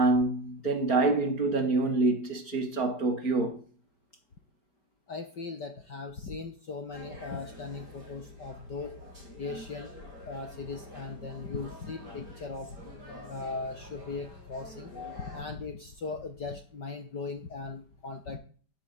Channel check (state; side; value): late; right; 5.0 ms